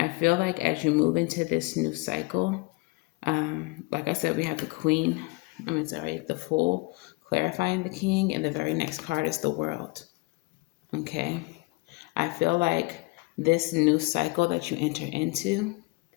feel like as you move into this new cycle, like I said, we have the Fool clarifying the king, and the very next card is the World. Okay. I feel like this new cycle that you enter into,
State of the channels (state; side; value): quieter; right; 25.6 dB